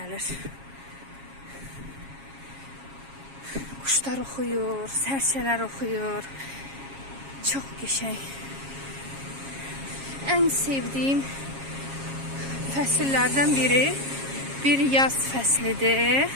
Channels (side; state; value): left; late; 7.3 ms